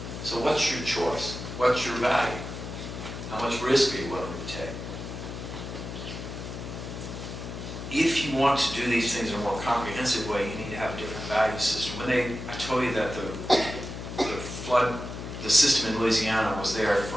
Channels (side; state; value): left; noise; hum, 8 dB below the sound